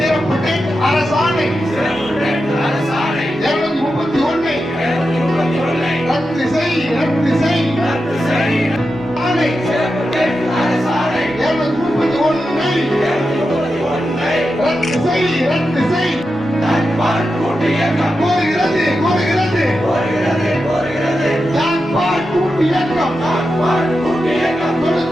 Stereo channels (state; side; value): normal; both; correlation 0.89